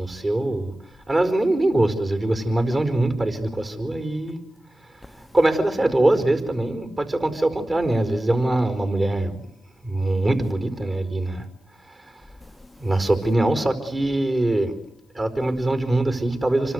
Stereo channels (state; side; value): normal; both; correlation 0.95